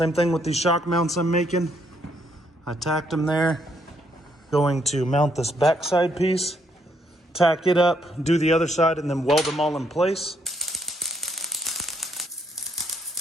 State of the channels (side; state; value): both; normal; correlation 0.73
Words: thing with these shock mounts I'm making. I tacked them there. Going to mount this backside piece, tack it up, do the other side, and then weld them all in place.